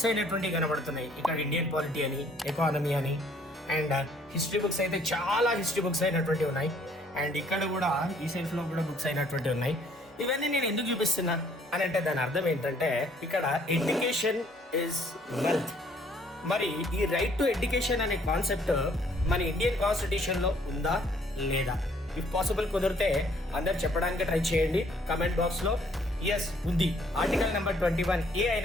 అయినటువంటి కనబడుతున్నాయి. ఇక్కడ ఇండియన్ పాలిటీ అని, ఎకానమీ అని, అండ్ హిస్టరీ బుక్స్ అయితే చాలా హిస్టరీ బుక్స్ అయినటువంటి ఉన్నాయి. అండ్ ఇక్కడ కూడా ఈ సెల్ఫ్ లో కూడా బుక్స్ అయినటువంటి ఉన్నాయి. ఇవన్నీ నేను ఎందుకు చూపిస్తున్నా అని అంటే దాని అర్థం ఏంటంటే, ఇక్కడ ఎడ్యుకేషన్ ఇస్ వెల్త్. మరి ఈ రైట్ టు ఎడ్యుకేషన్ అనే కాన్సెప్ట్ మన ఇండియన్ కాన్స్టిట్యూషన్ లో ఉందా లేదా? ఇఫ్ పాసిబుల్ కుదిరితే అందరు చెప్పడానికి ట్రై చేయండి కమెంట్ బాక్స్ లో. ఎస్, ఉంది. Article number 21A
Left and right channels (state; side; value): normal; both; correlation 0.62